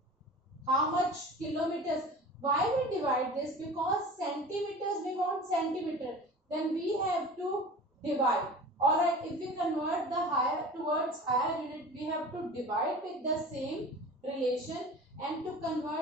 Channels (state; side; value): normal; both; correlation 0.38